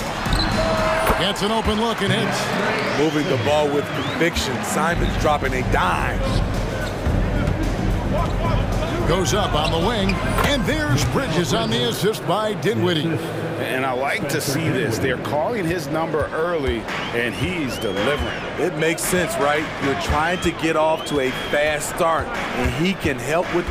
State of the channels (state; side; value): identical; both; correlation 1.00